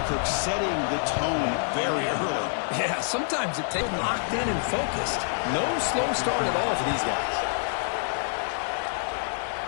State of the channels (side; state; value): right; silent; digital silence